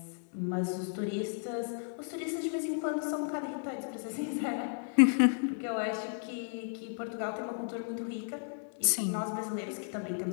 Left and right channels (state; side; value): silent; right; digital silence